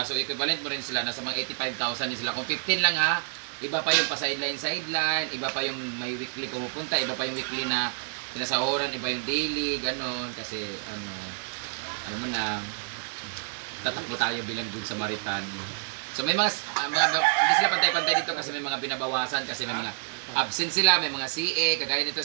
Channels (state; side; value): silent; left; digital silence